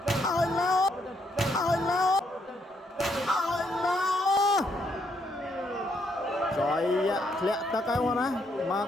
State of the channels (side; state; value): both; normal; correlation 0.74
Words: ឲ្យលោឲ្យលោឲ្យលោចយធ្លាក់ទឹកហើយមកណាមក